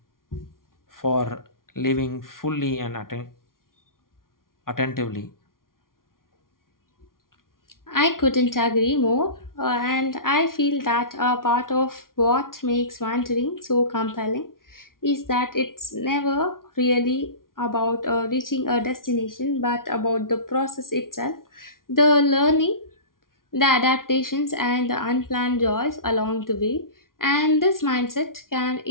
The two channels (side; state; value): right; late; 0.91 ms